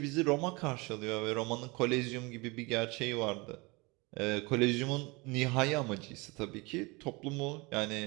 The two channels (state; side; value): quieter; left; 25.8 dB